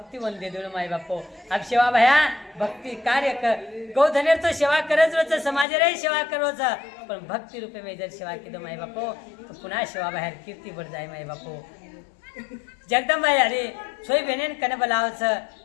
वंदे दोन माय बापो अब सेवा भया भक्ति कार्य कर गौधनेर तो सेवा करच रोज समाज रे सेवा करोच पण भक्ती रूपे में जर सेवा की दो माय बापो तो पुन्हा सेवा बाहेर कीर्ती बढ़ जाय माय बापो जगदंबाई अरे छोई बेनेन कने बोलावच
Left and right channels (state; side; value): drops out; right; at 5.7 s